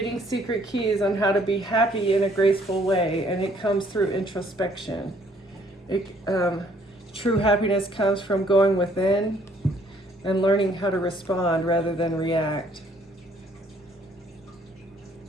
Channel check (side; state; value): both; normal; correlation 0.63